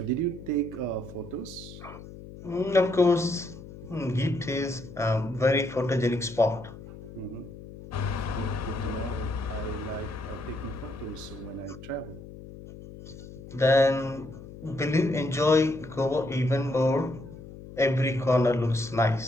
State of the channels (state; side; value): noise; left; hum, 15 dB below the sound